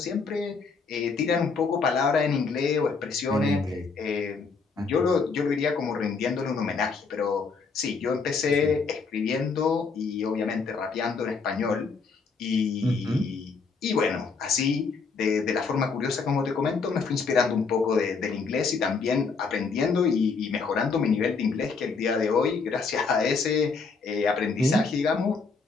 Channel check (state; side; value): quieter; right; 4.8 dB